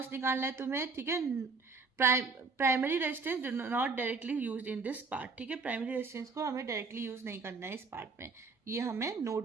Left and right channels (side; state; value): left; quieter; 4.5 dB